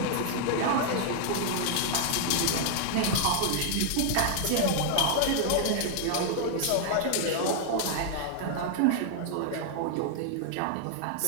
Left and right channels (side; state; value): both; different; correlation 0.00